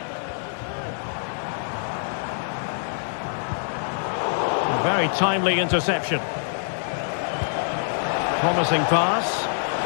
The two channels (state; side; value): silent; right; digital silence